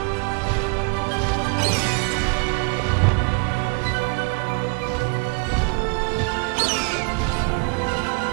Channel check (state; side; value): quieter; left; 32.4 dB